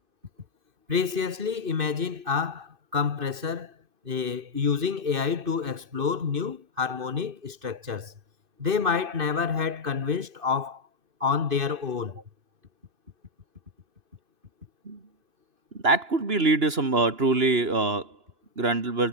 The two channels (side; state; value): left; late; 2.5 ms